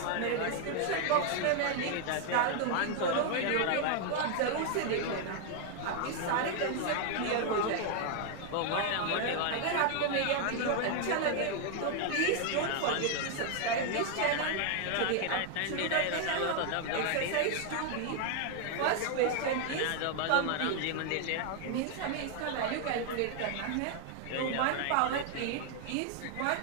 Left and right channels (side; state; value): both; different; correlation 0.00